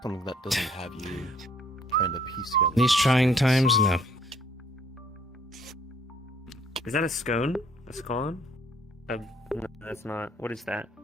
Something that doesn't have you trying to piece together. These trying times, no. Is that a scone? A scone? No, that's not. What is that?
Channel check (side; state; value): both; normal; correlation 0.63